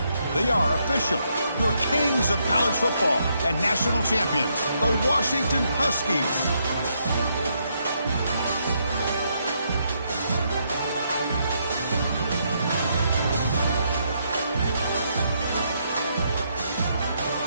They are official, your kings of college football and national champions, the Washington Huskies.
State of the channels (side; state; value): both; inverted; correlation -0.76